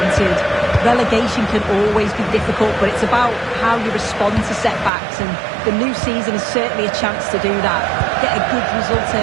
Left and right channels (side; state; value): left; drops out; at 4.9 s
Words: Relegation can always be difficult, but it's about how you respond to setbacks, and the new season is certainly a chance to do that. Get a good result